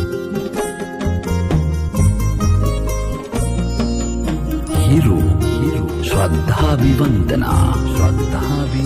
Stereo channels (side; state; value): both; identical; correlation 1.00